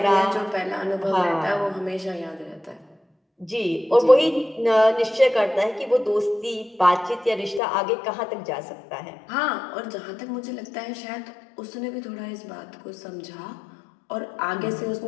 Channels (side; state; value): right; drops out; at 7.6 s